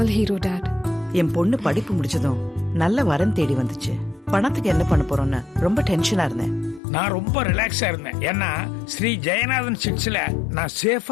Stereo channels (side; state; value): right; drops out; at 6.8 s